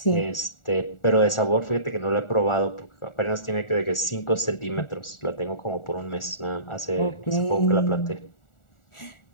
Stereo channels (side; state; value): right; late; 1.4 ms